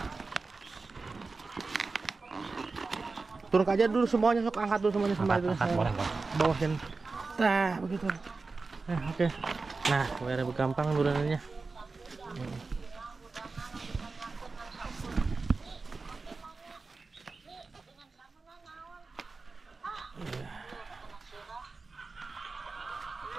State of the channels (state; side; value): quieter; left; 4.0 dB